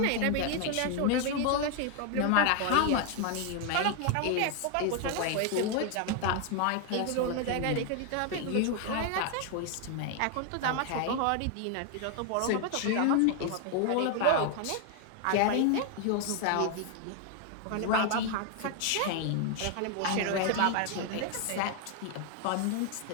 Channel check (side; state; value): both; different; correlation 0.00